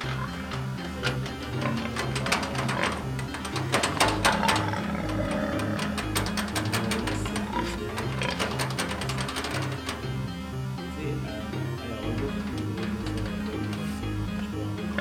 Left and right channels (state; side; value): identical; both; correlation 1.00